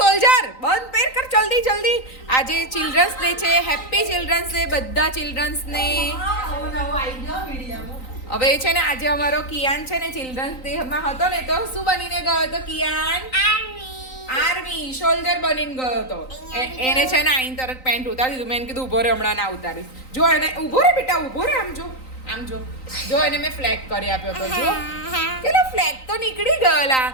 બંધ પેર કર જલ્દી જલ્દી. આજે ચિલ્ડ્રન્સ ડે છે. હેપી ચિલ્ડ્રન્સ ડે બધા ચિલ્ડ્રન્સને. હવે છે ને આજે અમારો કિયાન છે ને ચિલ્ડ્રન્સ ડે માં હતો ને તો શું બનીને ગયો હતો કિયાન? આર્મી સોલ્જર બનીને ગયો હતો. એને છે ને આઈન તરત પેન્ટ ઉતારી દીધું. મેં કીધું ઉભો રે, હમણાં ના ઉતારીશ. જો એને ઉભો રે બેટા, ઉભો રે. આમ જો એને મેં ફ્લેગ કરી આપ્યો તો. જો પેલો ફ્લેગ તો નીકળી ગયેલા.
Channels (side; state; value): right; late; 3.9 ms